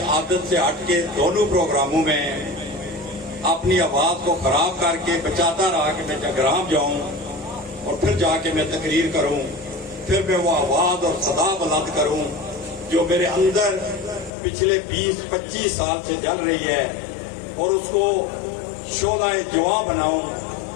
عادت سے ہٹ کے دونوں پروگراموں میں اپنی آواز کو خراب کر کے بچاتا رہا کہ میں جگرام جاؤں اور پھر جا کے میں تقریر کروں، پھر میں وہ آواز اور صدا بلند کروں جو میرے اندر پچھلے 20-25 سال سے جل رہی ہے، اور اس کو شعلہ جواں بناؤں،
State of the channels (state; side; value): drops out; right; at 14.3 s